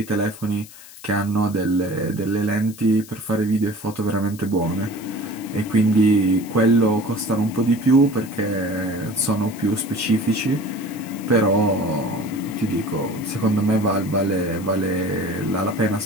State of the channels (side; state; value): left; noise; hiss, 19 dB below the sound